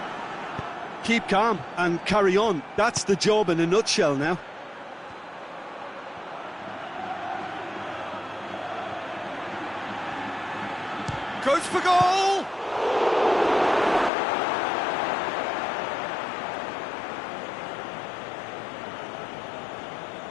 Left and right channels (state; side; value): drops out; right; at 14.1 s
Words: Keep calm and carry on. That's the job in a nutshell now. Goes for goal!